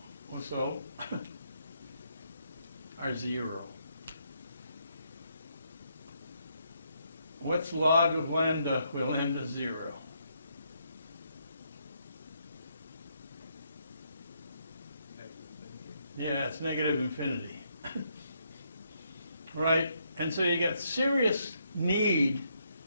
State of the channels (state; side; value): inverted; both; correlation -0.75